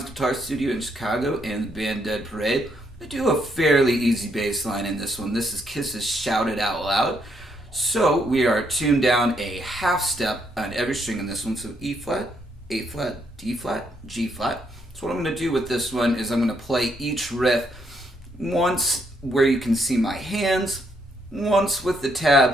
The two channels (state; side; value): normal; both; correlation 0.74